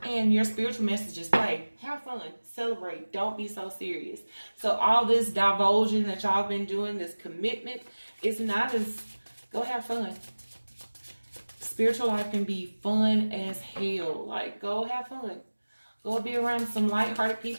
And your spiritual messages play. Have fun. Celebrate. Don't be so serious. So all this divulging that y'all been doing, this commitment, is not as... Go have fun. spiritual life can be fun as hell. Like, go have fun. Go be around some lighthearted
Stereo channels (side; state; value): both; inverted; correlation -1.00